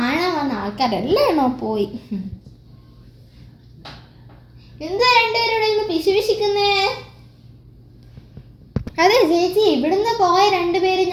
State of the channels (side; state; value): both; identical; correlation 1.00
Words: വന്ന ആൾക്കാരെല്ലാണോ പോയി. എന്താ രണ്ടുപേരുടെ പിശുപിശിക്കുന്നേ? അതെ ചേച്ചി, ഇവിടുന്ന് പോയ രണ്ടുപേര്